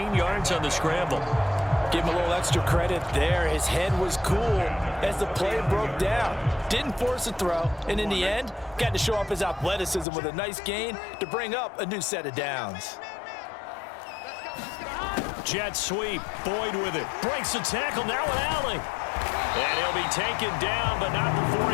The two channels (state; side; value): drops out; right; at 10.1 s